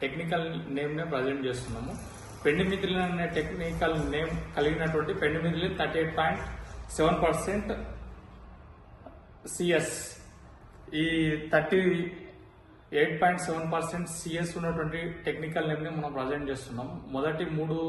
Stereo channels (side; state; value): both; identical; correlation 1.00